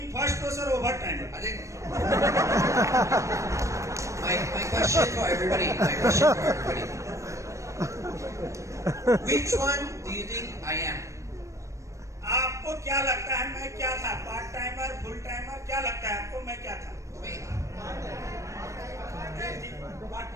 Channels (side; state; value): left; late; 0.15 ms